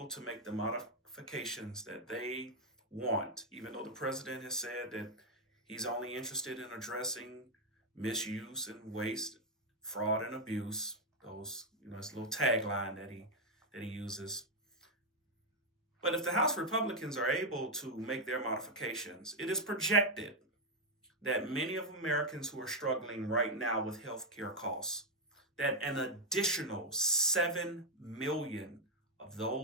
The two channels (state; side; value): normal; both; correlation 0.01